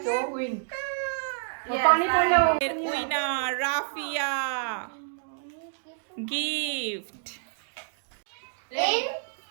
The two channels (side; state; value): left; silent; digital silence